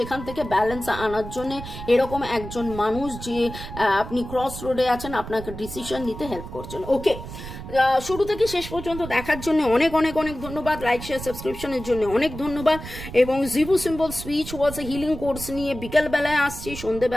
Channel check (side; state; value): right; noise; rumble, 11 dB below the sound